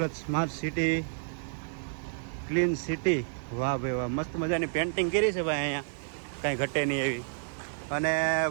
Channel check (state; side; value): silent; left; digital silence